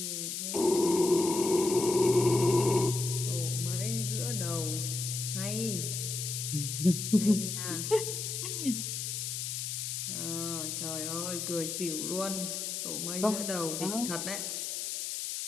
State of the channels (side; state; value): left; noise; hiss, 3 dB below the sound